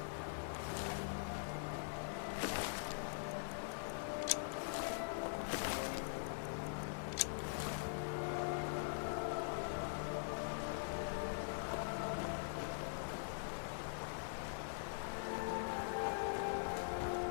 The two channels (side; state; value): right; silent; digital silence